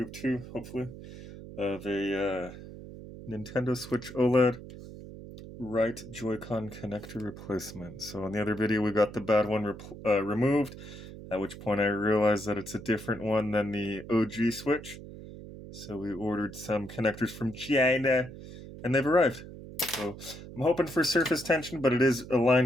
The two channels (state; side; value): noise; right; hum, 14 dB below the sound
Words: of 2, hopefully, of a Nintendo Switch OLED Right Joycon connector replacement. So in the other video, we got the bad one removed, at which point I realized that it's a different one than the OG Switch. So we ordered some connectors from China, and they've arrived. So I'm hoping for surface tension, but it is